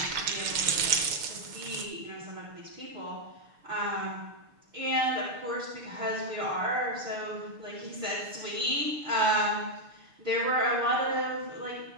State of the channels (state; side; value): late; left; 6.6 ms